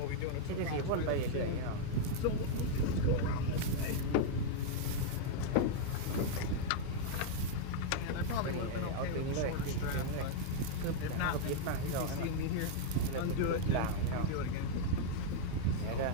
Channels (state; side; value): different; both; correlation -0.01